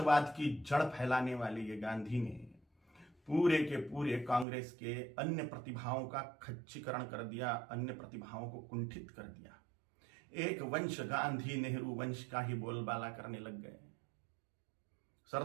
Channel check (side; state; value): left; drops out; at 4.5 s